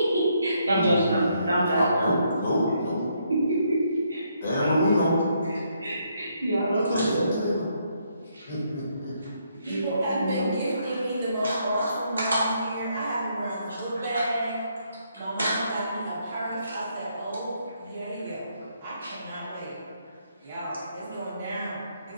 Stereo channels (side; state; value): both; inverted; correlation -0.73